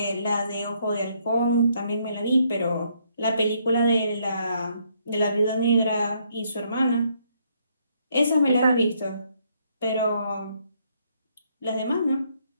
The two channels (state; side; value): inverted; both; correlation -0.71